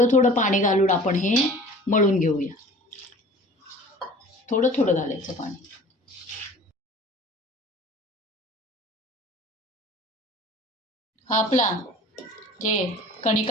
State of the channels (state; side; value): normal; both; correlation 0.44